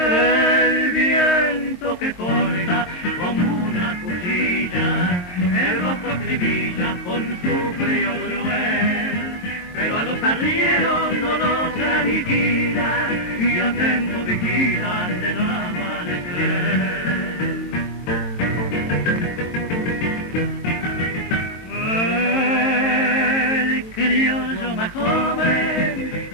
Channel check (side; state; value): right; late; 22 ms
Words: El viento que corta como una cuchilla, el rostro acribilla con su frío cruel, pero a los arrieros no los aniquila y atento vigilan de no amanecer. El criollo más joven